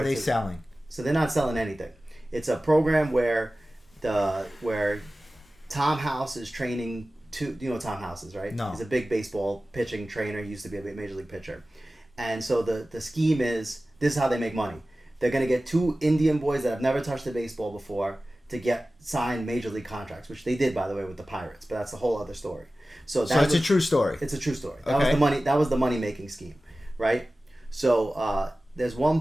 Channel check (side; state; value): both; normal; correlation 0.96